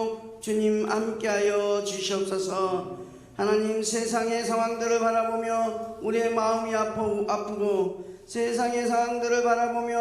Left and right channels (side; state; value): both; identical; correlation 1.00